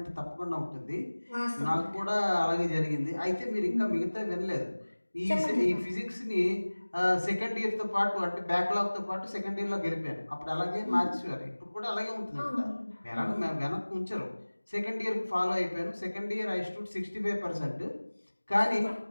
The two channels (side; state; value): both; inverted; correlation -1.00